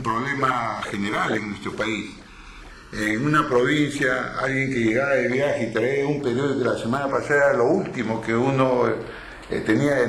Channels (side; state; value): both; identical; correlation 1.00